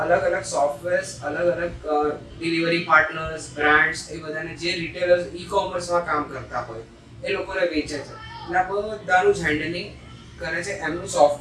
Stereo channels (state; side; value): identical; both; correlation 1.00